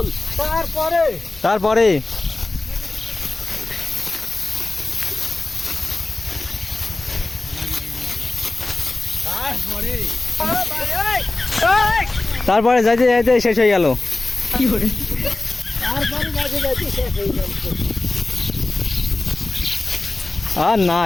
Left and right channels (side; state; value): right; quieter; 3.0 dB